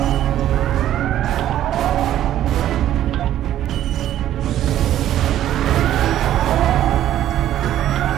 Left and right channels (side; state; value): left; quieter; 12.1 dB